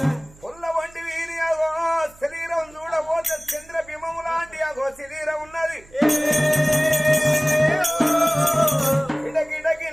పుల్ల వంటి వీరి అగో శరీరం చూడబోతే చంద్రబింబము లాంటి అగో శరీరం ఉన్నది. గిడగిడకి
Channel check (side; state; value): right; noise; hum, 25 dB below the sound